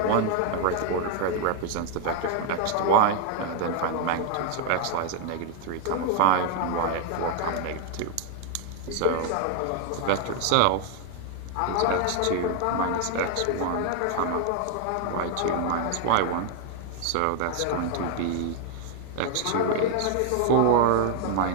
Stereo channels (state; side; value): different; both; correlation 0.00